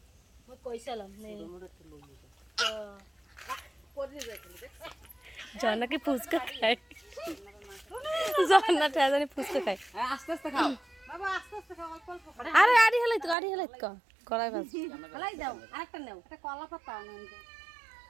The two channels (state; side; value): drops out; left; at 13.4 s